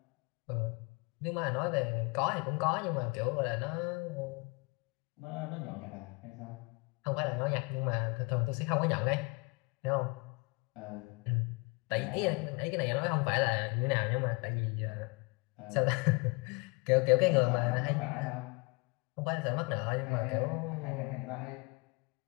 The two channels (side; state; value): right; quieter; 29.4 dB